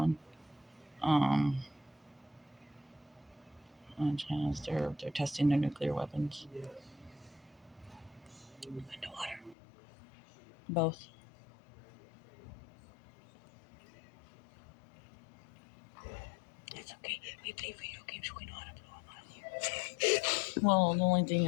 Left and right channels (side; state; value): right; drops out; at 9.6 s